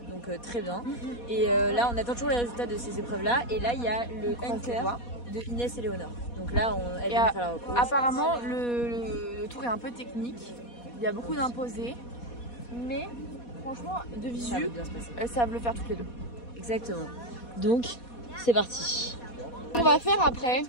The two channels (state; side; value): late; right; 4.2 ms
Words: donc très bien. Et là, on attend toujours les résultats de ces épreuves-là. Et là, il y a le hunter de Inès et Léonore. Donc là, elle vient de faire la repose. Apparemment, le tour est un peu technique. Il y a beaucoup d'imposés. Mais franchement, de visu, elles savent le faire toutes les 2. Exactement. Donc, c'est parti. On va faire après